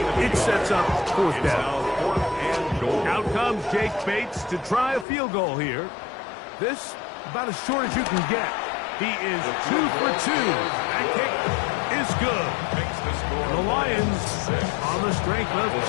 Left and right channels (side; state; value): right; drops out; at 5.1 s